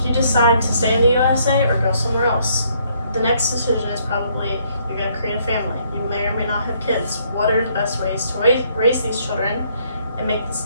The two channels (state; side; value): inverted; both; correlation -0.68